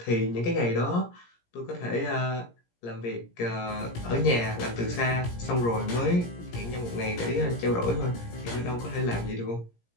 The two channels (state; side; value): late; right; 17 ms